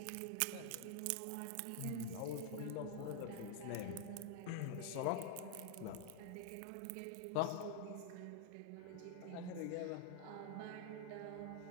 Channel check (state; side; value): different; both; correlation 0.00